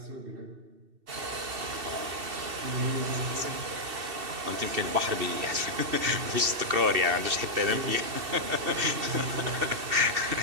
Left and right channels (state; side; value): late; left; 2.7 ms